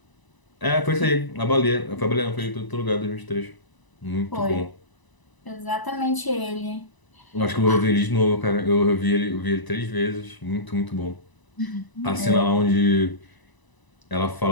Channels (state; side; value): late; right; 1.0 ms